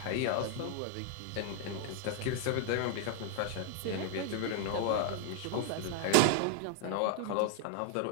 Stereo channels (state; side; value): different; both; correlation 0.01